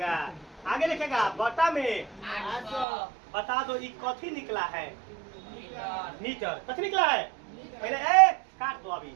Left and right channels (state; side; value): drops out; left; at 2.9 s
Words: आगे लिखेगा बटा में बता दो ये कथी निकला है मीटर, कथी निकला है पहले काट दो अभी